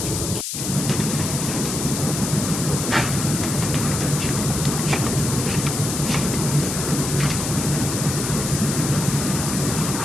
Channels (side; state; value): left; noise; hiss, 3 dB below the sound